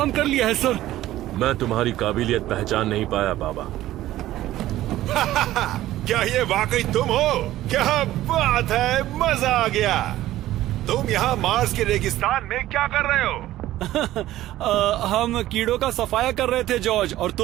कर लिया है सर। मैं तुम्हारी काबिलियत पहचान नहीं पाया बाबा। क्या ये वाकई तुम हो? क्या बात है, मजा आ गया। तुम यहाँ मार्स के रेगिस्तान में क्या कर रहे हो? हम कीड़ों का सफाया कर रहे थे जॉर्ज, और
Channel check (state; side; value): quieter; left; 14.7 dB